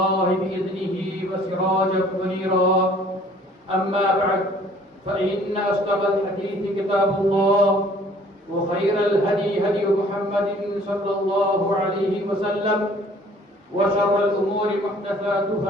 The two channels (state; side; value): normal; both; correlation 0.55